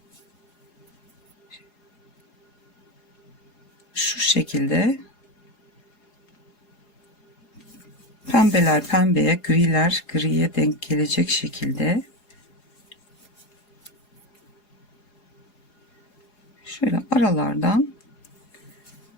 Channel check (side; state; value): right; late; 4.8 ms